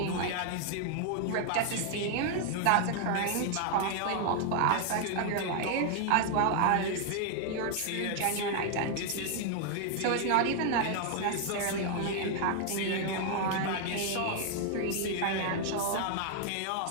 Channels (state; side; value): different; both; correlation 0.00